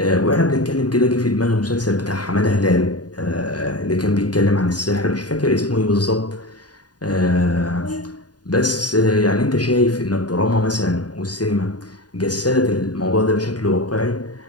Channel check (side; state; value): right; late; 0.69 ms